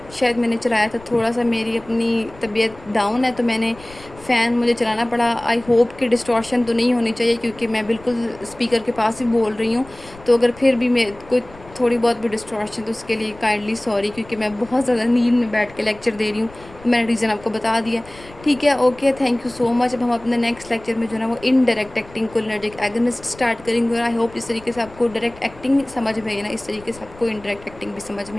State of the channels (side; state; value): left; noise; rumble, 21 dB below the sound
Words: शायद मैंने चलाया था, थोड़ा सा मेरी अपनी तबीयत डाउन है तो मैंने फ़ैन मुझे चलाना पड़ा। आई होप कि डिस्टॉर्शन तो नहीं होनी चाहिए, क्योंकि मैं बिल्कुल स्पीकर के पास ही बोल रही हूँ। तो अगर फिर भी मैं कोई थोड़ी बहुत भी डिस्टॉर्शन, तो उसके लिए काइंडली सॉरी, क्योंकि मैं बहुत ज़्यादा नींद में बैठ के लेक्चर दे रही हूँ। मैंने रीज़न आपको बता दिया। ठीक है, okay, thank you so much. अब हम अपने नेक्स्ट लेक्चर में जो है ना वो indirect acting cholinergic agonist start करेंगे, और आई होप इस तरीके से आपको डायरेक्ट एक्टिंग समझ में आई ना, इस तरीके से आपको इनडायरेक्ट एक्टिंग भी समझ